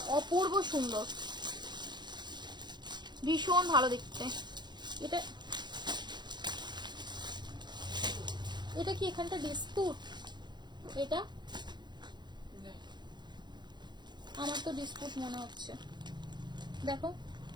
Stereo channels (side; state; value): left; late; 0.21 ms